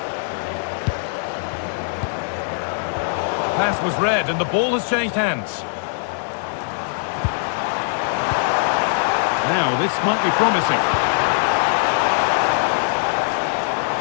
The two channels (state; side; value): silent; right; digital silence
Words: The pass was read and the ball has changed hands. Now, this might be promising.